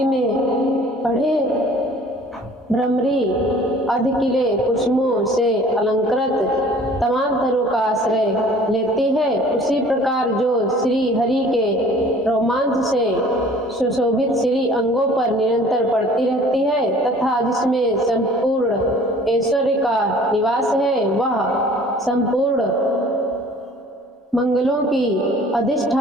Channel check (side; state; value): both; normal; correlation 0.50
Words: में पढ़े। भ्रमरी अधकिले कुसुमों से अलंकृत तमाम तरों का आश्रय लेती है, उसी प्रकार जो श्री हरि के रोमांच से सुशोभित श्री अंगों पर निरंतर पड़ती रहती है तथा जिसमें संपूर्ण ऐश्वर्य का निवास है, वह संपूर्ण मंगलों की